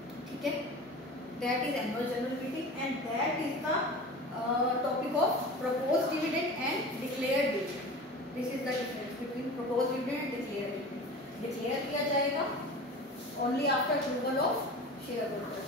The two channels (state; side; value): normal; both; correlation 0.35